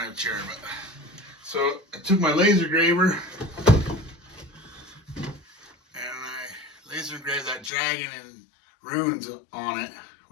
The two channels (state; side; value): drops out; right; at 7.7 s